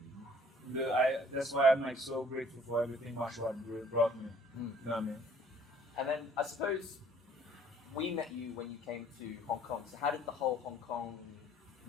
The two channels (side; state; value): both; normal; correlation 0.57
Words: That's why I'm like so grateful for everything martial art brought me. You know what I mean? And then I suppose we met you when you came to Hong Kong. So how did the whole